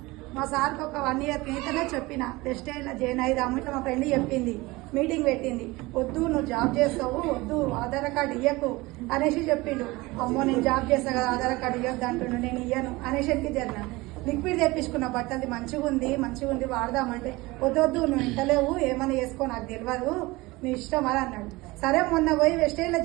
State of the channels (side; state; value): left; quieter; 21.6 dB